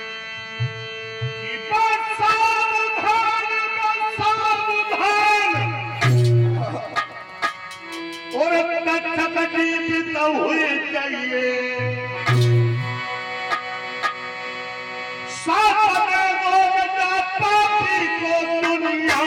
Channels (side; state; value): both; identical; correlation 1.00